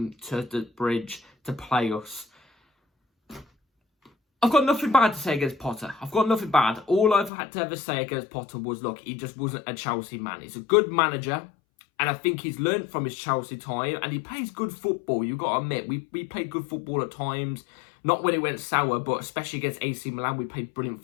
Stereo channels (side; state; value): right; drops out; at 7.3 s